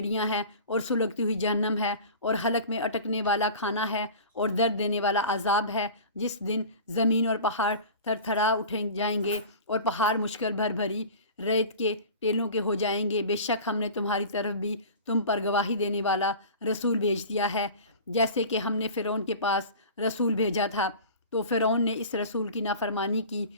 ہیں اور سلگتی ہوئی جہنم ہے، اور حلق میں اٹکنے والا کھانا ہے اور درد دینے والا عذاب ہے، جس دن زمین اور پہاڑ تھر تھرا اٹھیں جائیں گے اور پہاڑ مشکل بھری ریت کے ٹیلوں کے ہو جائیں گے۔ بے شک ہم نے تمہاری طرف بھی تم پر گواہی دینے والا رسول بھیج دیا ہے، جیسے کہ ہم نے فرعون کے پاس رسول بھیجا تھا، تو فرعون نے اس رسول کی نافرمانی کی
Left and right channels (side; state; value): both; inverted; correlation -0.38